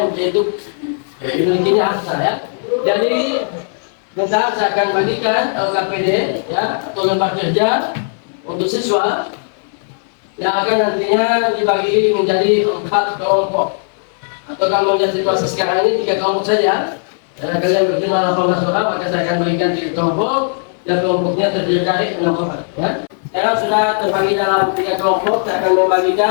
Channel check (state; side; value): silent; right; 61 dB below the other